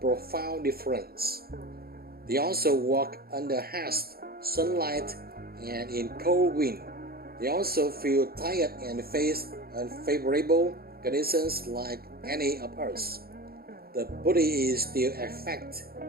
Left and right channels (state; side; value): late; left; 0.44 ms